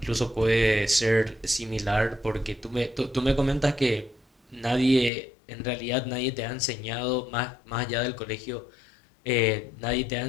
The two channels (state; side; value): drops out; right; at 5.1 s